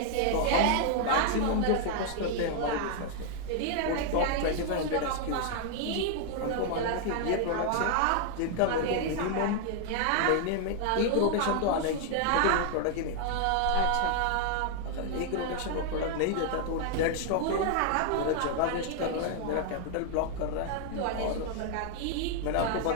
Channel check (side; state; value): both; different; correlation 0.00